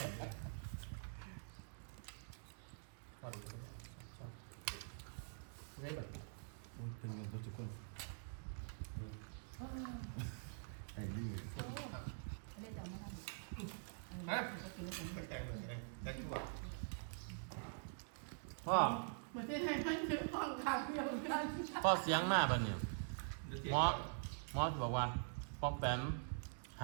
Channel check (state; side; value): silent; left; digital silence